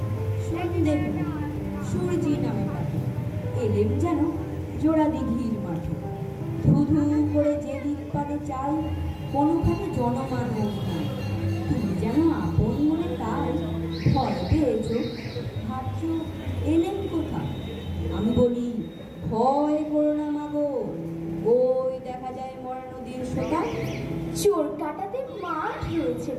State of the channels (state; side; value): identical; both; correlation 1.00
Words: সন্ধে সূর্যি নামে পাখি এলেম যেন জোড়া দিঘির মাঠে। ধু ধু করে যে দিক পানে চাই, কোনোখানে জনমানব নাই। তুমি যেন আপন মনে তাই ভয় পেয়েছ, ভাবছ এলেম কোথা। আমি বলি ভয় করো না মাগো, ওই দেখা যায় মরা নদীর সোতা। চোর কাটাতে মাঠ রয়েছে